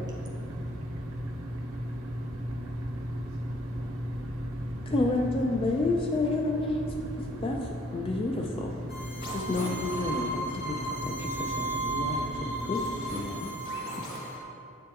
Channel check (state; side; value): normal; both; correlation 0.61